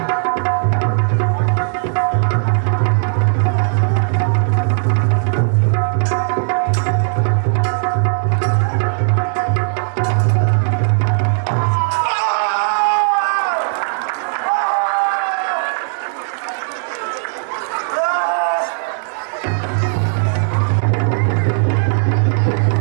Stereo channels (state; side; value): silent; left; digital silence